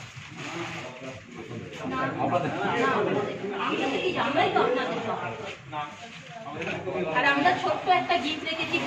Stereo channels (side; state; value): both; identical; correlation 1.00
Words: আর আমরা ছোট্ট একটা গিফট রেখেছি